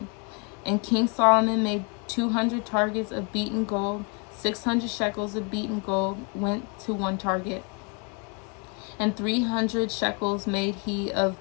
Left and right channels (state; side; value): quieter; right; 34.1 dB